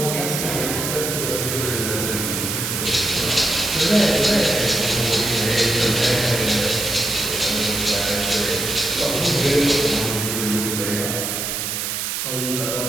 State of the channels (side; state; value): right; noise; hiss, 2 dB below the sound